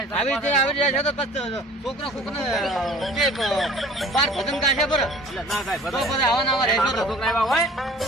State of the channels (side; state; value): both; normal; correlation 0.48